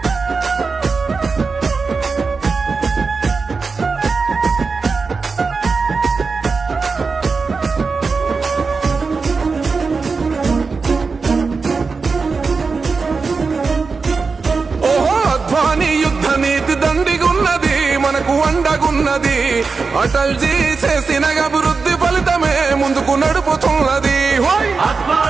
ఓహో అద్వానీ యుద్ధ నీతి దండిగున్నది, మనకు అండగున్నది, అటల్జీ చేసిన అభివృద్ధి ఫలితమే ముందుకు నడుపుతున్నది.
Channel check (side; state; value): left; quieter; 4.6 dB